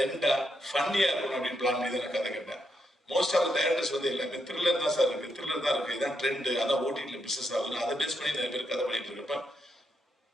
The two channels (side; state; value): both; normal; correlation 0.80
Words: ஃபன்னியா இருக்கணும் அப்படின்னு பிளான் பண்ணி தான் கதை கேட்டேன். மோஸ்ட் ஆஃப் டைரக்டர்ஸ் வந்து எல்லாமே த்ரில்லர் தான் சார் இருக்கு, த்ரில்லர் தான் இருக்கு, இதான் ட்ரெண்ட், அதான் ஓடிடியில் பிசினஸ் ஆகுது, அதை பேஸ் பண்ணி நிறைய பேர் கதை பண்ணிட்டு இருக்கப்ப